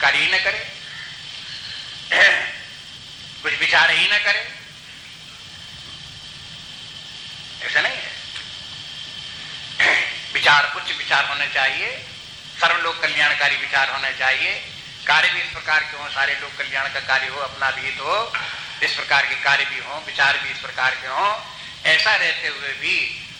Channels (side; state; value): both; identical; correlation 1.00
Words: ही न करे, कुछ विचार ही न करे। ऐसा नहीं है। विचार उच्च विचार होने चाहिए, सर्वलोक कल्याणकारी विचार होने चाहिए, कार्य भी इस प्रकार के हो, सारे लोग कल्याण का कार्य हो, अपना भी हो, इस प्रकार के कार्य भी हो, विचार भी इस प्रकार के हो। ऐसा रहते हुए भी